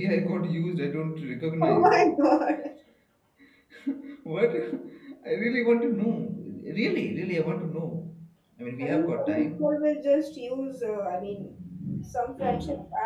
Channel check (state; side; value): identical; both; correlation 1.00